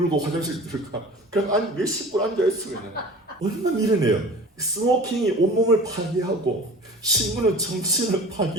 화장실 들어가. 그냥 몇십 분 앉아있어 그냥. 얼마나 미련해요. 스모킹이 온몸을 파괴하고 신문은 정신을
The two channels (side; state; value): both; normal; correlation 0.40